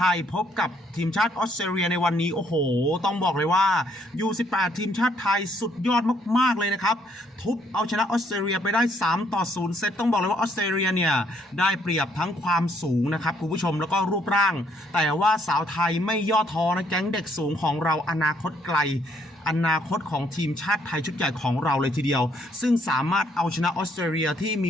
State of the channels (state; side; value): normal; both; correlation 0.69